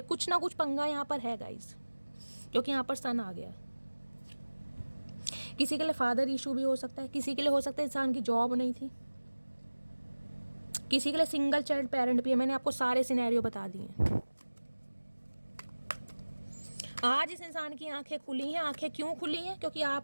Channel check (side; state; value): both; inverted; correlation -1.00